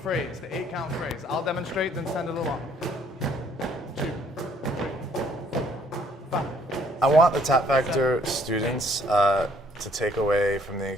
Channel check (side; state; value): both; normal; correlation 0.63